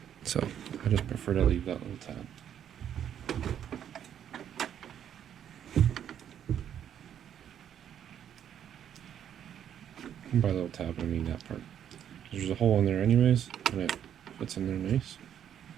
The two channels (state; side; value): quieter; left; 9.6 dB